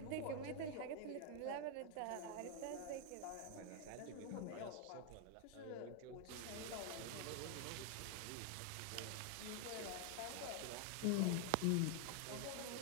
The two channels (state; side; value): different; both; correlation 0.00